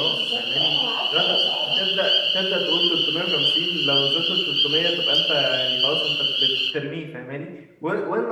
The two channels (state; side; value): identical; both; correlation 1.00